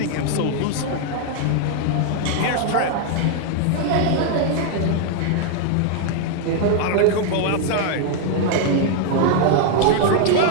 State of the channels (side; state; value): both; different; correlation 0.00